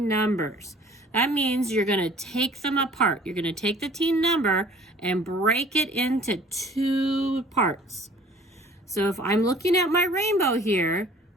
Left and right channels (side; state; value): both; normal; correlation 0.52